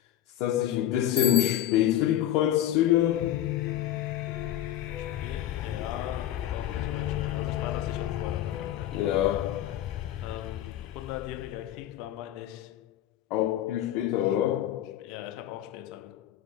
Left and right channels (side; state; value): right; quieter; 12.4 dB